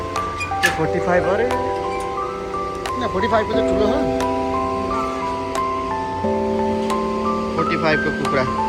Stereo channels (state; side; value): identical; both; correlation 1.00